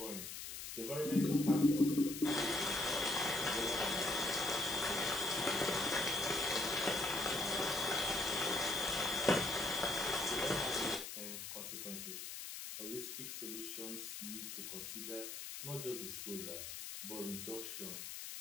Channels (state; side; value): noise; left; hiss, 8 dB below the sound